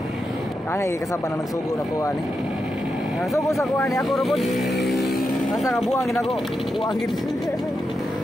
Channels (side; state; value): both; normal; correlation 0.87